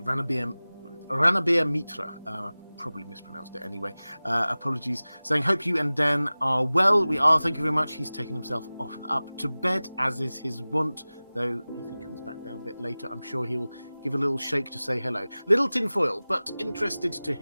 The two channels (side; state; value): both; inverted; correlation -0.98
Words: Ranabir Mitra. Probably mispronounced it anyway. Apologies. Saying, hope you and Dan are well. We are, thank you very much. He's taken himself up to bed, as is his wont. Though, if he comes back down a bit later, I'm sure he'll give a little shake to say hello. Little tinfoil, but interested to